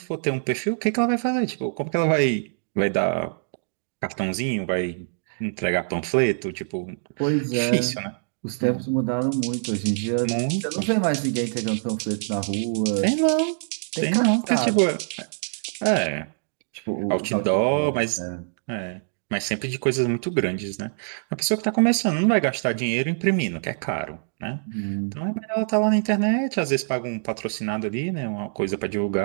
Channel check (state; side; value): silent; left; digital silence